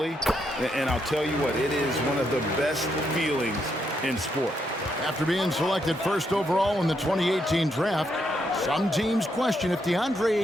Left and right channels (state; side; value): normal; both; correlation 0.78